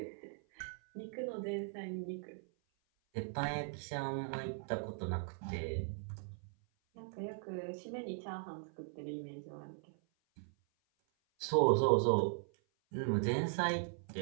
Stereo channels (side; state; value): left; silent; 52 dB below the other